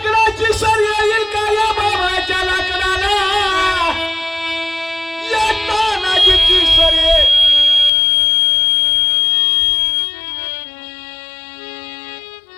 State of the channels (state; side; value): drops out; right; at 7.9 s